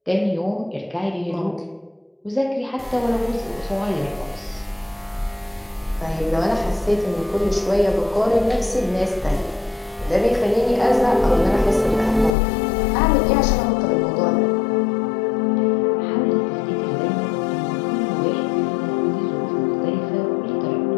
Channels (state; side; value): drops out; right; at 12.4 s